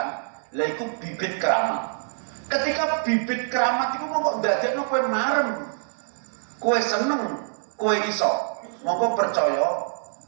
Lah iku bibit keramat. Ketika bibit keramat iku mongko ndadekno kowe marem, kowe seneng, kowe iso. Mongko percaya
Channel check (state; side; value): silent; left; digital silence